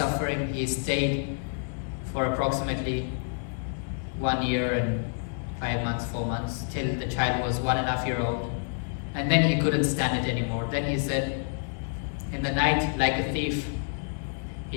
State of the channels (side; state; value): right; silent; 59 dB below the other